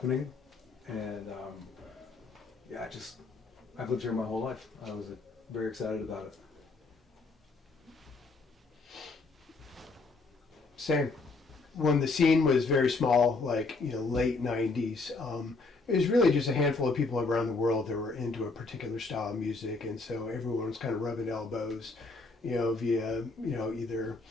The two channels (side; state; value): right; quieter; 3.8 dB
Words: and I've lived here my whole life. I was very excited about it. Same. When the scene was very small, like late '90s, it was really just a handful of people around the world that were into a particular style of music, and so everyone was kind of rubbing elbows, via either